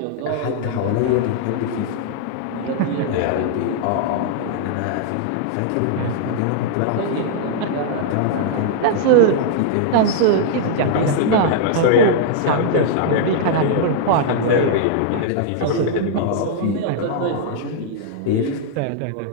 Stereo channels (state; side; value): different; both; correlation -0.01